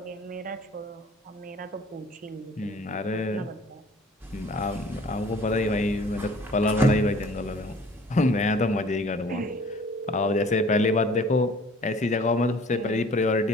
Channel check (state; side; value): normal; both; correlation 0.51